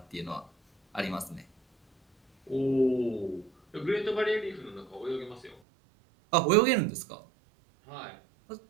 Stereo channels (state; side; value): drops out; left; at 5.6 s